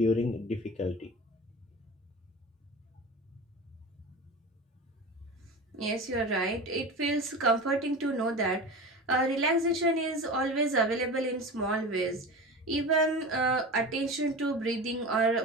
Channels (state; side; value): normal; both; correlation 0.30